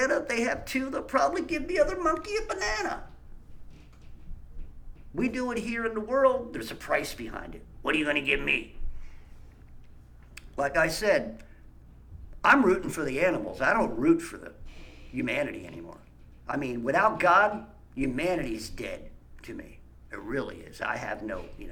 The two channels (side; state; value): both; identical; correlation 1.00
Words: if they have two, they'll probably give the other monkey a banana. We do it here in the world, there's a price behind it. What are you going to give me? Like I said, I'm rooting for the animals. I don't root for the humanity anymore. I mean, without God, humanity's dead to me. It really is. I have no,